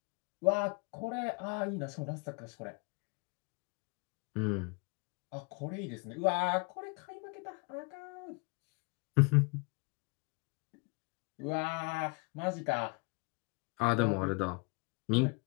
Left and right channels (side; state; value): right; quieter; 30.2 dB